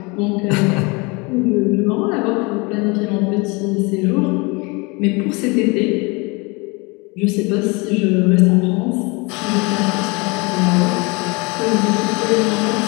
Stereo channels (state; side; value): quieter; right; 27.8 dB